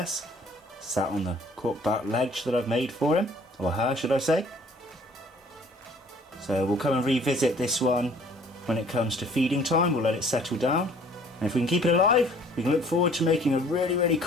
sat on the corkback ledge that I've made for him, or her should I say. So we'll come and revisit this one when it comes to feeding time. We'll let it settle down, and if we can keep it alive, we can look forward to making a really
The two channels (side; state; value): both; normal; correlation 0.55